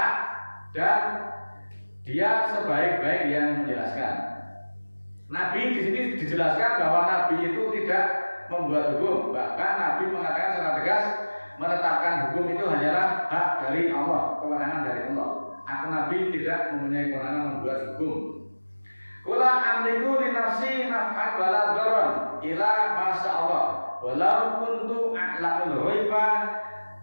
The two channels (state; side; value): inverted; both; correlation -1.00